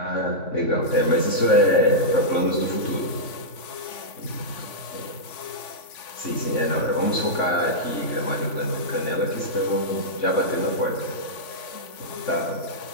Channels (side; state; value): right; late; 3.5 ms